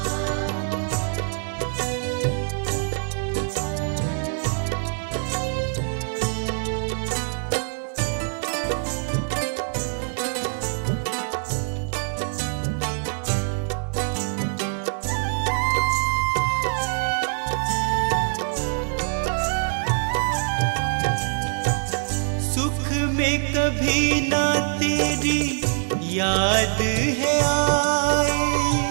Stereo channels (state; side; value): silent; left; 62 dB below the other